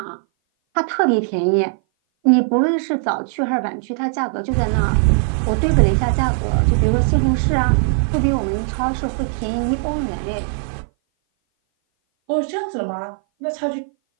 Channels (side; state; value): left; silent; 58 dB below the other